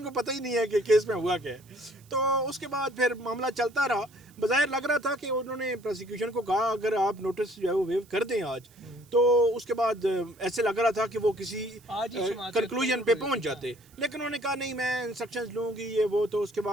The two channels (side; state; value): right; noise; hiss, 28 dB below the sound